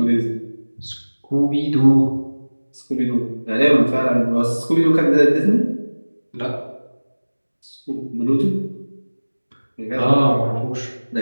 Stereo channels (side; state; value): both; inverted; correlation -1.00